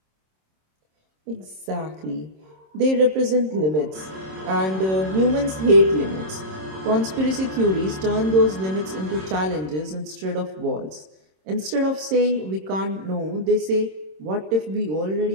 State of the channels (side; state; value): left; late; 26 ms